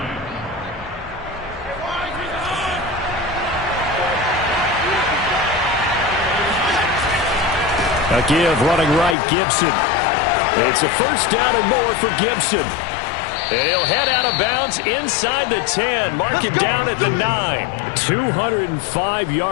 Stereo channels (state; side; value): drops out; right; at 9.2 s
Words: A give running right, Gibson. It's a first down and more for Gibson. And he'll head out of bounds inside the 10. Mark him down at the 9. 205